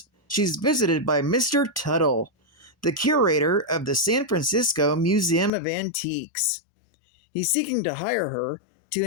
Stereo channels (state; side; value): drops out; right; at 5.5 s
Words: she's visited by Mr. Tuttle, the curator of the San Francisco Museum of Antiques. He's seeking to hire her to